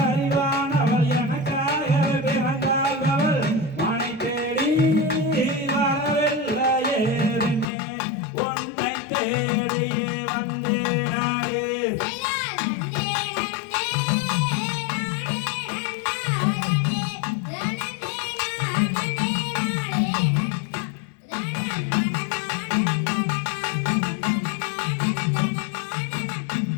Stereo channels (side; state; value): right; drops out; at 7.7 s